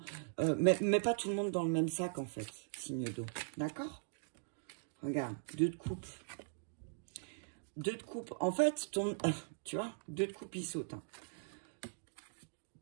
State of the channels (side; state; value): left; silent; digital silence